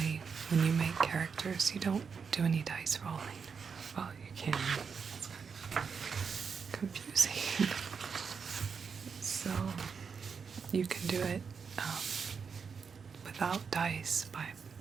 when you make characters you don't do any dice rolling. Well, you can. It's kind of confusing. So you can do it without dice by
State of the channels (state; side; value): quieter; left; 5.9 dB